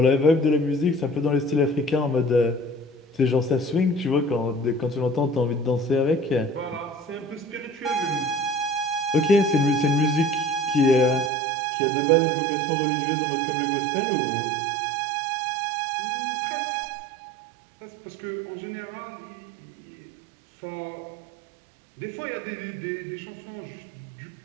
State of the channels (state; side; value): drops out; left; at 11.3 s